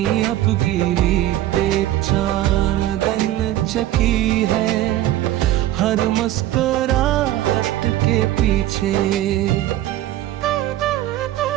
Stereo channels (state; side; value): quieter; left; 14.0 dB